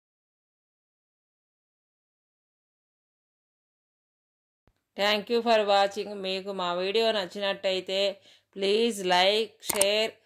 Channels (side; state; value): both; identical; correlation 1.00